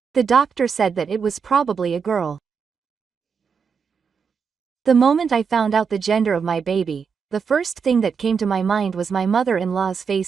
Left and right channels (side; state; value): left; quieter; 6.1 dB